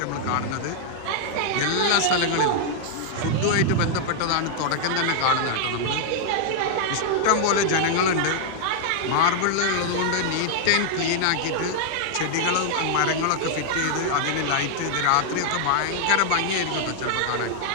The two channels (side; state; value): both; different; correlation -0.01